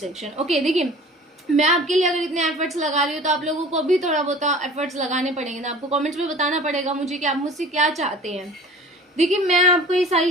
Okay, देखिए मैं आपके लिए अगर इतने एफर्ट्स लगा रही हूँ तो आप लोगों को भी थोड़ा बहुत एफर्ट्स लगाने पड़ेंगे ना। आपको कमेंट्स में बताना पड़ेगा मुझे कि आप मुझसे क्या चाहते हैं। देखिए मैं आपको ये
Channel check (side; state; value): both; normal; correlation 0.44